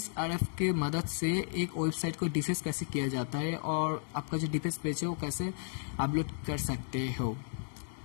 के मदद से एक वेबसाइट को डिफेंस कैसे किया जाता है और आपका जो डिफेंस पेज है वो कैसे अपलोड कर सकते हो।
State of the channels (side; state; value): right; silent; digital silence